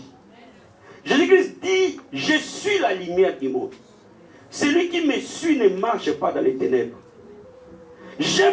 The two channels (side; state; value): both; identical; correlation 1.00